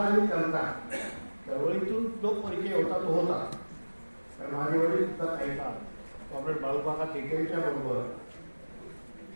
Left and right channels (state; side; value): inverted; both; correlation -1.00